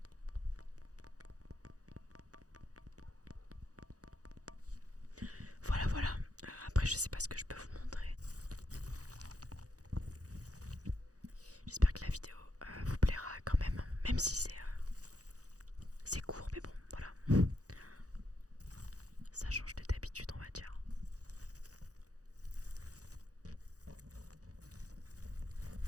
Voilà, voilà. Après, je sais pas ce que je peux vous montrer. J'espère que la vidéo vous plaira quand même. Même si c'est court, mais bon, voilà. Ça change de d'habitude, on va dire.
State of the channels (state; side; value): late; left; 0.67 ms